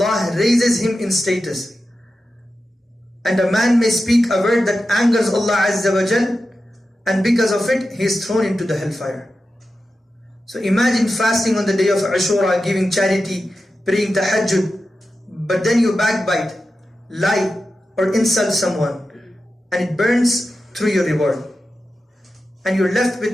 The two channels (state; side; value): normal; both; correlation 0.91